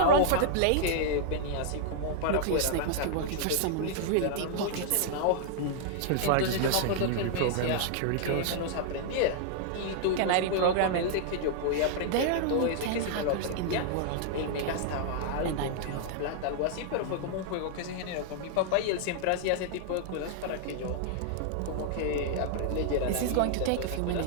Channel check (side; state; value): both; different; correlation -0.01